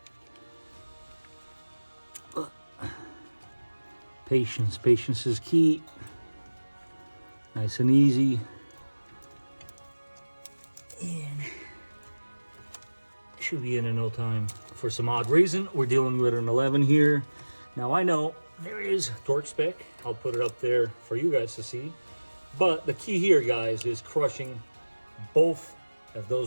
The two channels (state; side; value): inverted; both; correlation -1.00